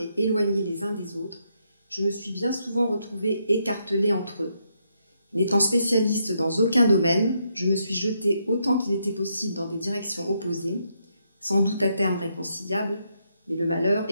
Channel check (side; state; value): both; inverted; correlation -0.78